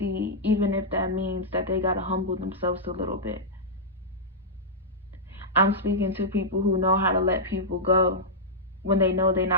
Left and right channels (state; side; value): normal; both; correlation -0.10